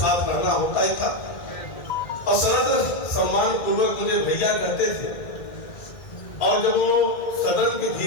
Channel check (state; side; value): late; right; 2.4 ms